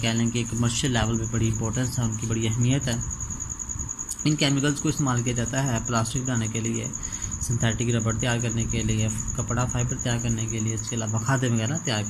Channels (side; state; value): both; identical; correlation 1.00